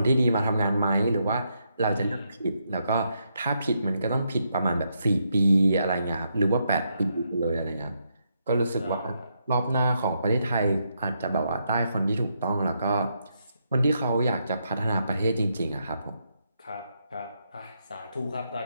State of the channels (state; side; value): inverted; both; correlation -0.79